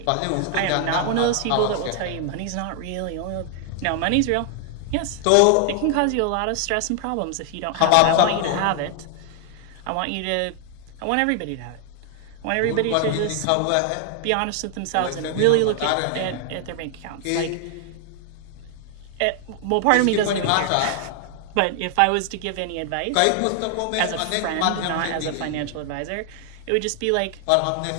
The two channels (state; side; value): different; both; correlation 0.00